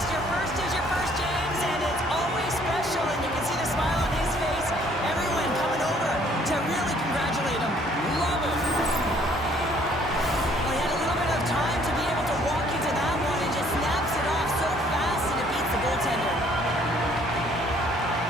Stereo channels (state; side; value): normal; both; correlation 0.61